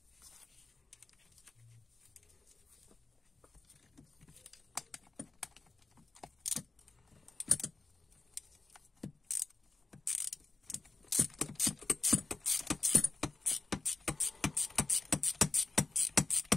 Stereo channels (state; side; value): quieter; right; 3.6 dB